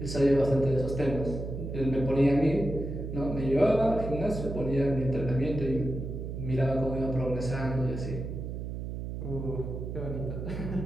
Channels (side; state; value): right; noise; hum, 6 dB below the sound